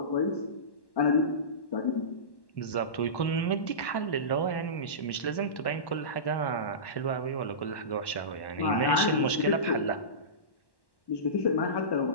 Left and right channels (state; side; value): late; right; 1.1 ms